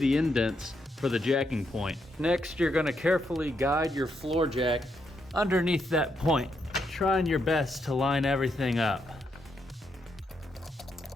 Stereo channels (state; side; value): normal; both; correlation 0.79